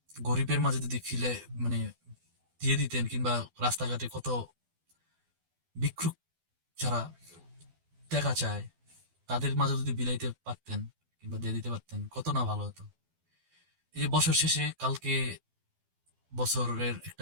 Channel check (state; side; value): late; left; 12 ms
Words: গরিবের মাঝে যদি ফিলে মানে দিয়ে দিতেন, কিংবা রাস্তাঘাটে কত ভিক্ষুক যারা টাকা চায় তাদের মাঝে যদি বিলাইতে পারতেন কিংবা দিয়ে দিতে পারতেন, কত না ভালো হতো। এই যে বছর শেষে কালকে বছরের